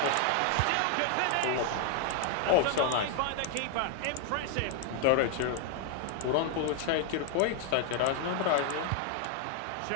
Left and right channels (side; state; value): both; different; correlation 0.00